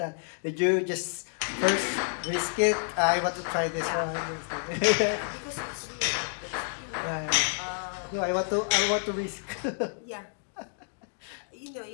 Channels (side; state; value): right; silent; digital silence